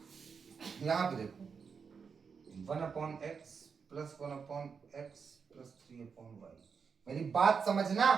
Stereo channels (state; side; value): quieter; left; 5.9 dB